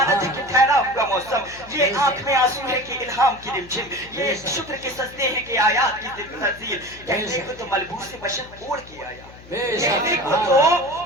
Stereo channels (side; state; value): left; noise; hum, 20 dB below the sound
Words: ہے کہ ٹھہرا ہوا موسم، یہ آنکھ میں آنسو ہے کہ الہام کی رمجھم، یہ شکر کے سجدے ہیں کہ آیات کی تنزیل، کہنے کو تو ملبوس بشر اوڑھ کے آیا، کہنے کو تو